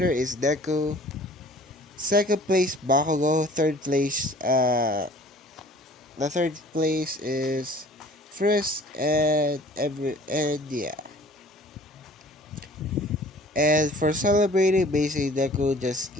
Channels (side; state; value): both; normal; correlation 0.50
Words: is Deku. Second place Bakugo. The third place is Frisk, and yeah. And for celebrating, basically Deku just